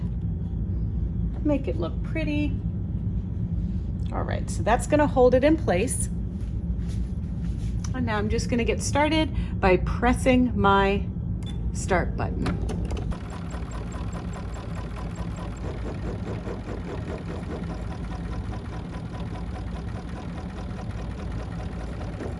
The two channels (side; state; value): both; identical; correlation 1.00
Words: make it look pretty. All right, so that's going to hold it in place. And now I'm just going to get started by pressing my start button.